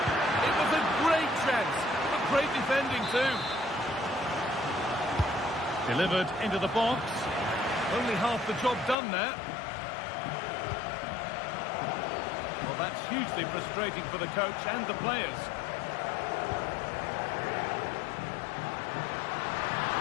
It was a great chance. A great defending too. Delivered into the box. Only half the job done there. Well, that's hugely frustrating for the coach and the players.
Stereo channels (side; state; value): right; drops out; at 9.0 s